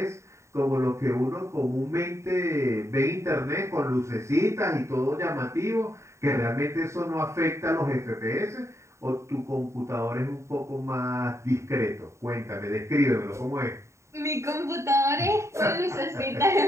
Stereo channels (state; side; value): late; left; 0.14 ms